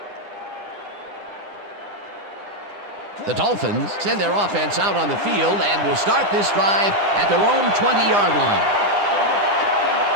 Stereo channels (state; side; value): late; left; 9.9 ms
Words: The Dolphins send their offense out on the field and will start this drive at their own 20-yard line.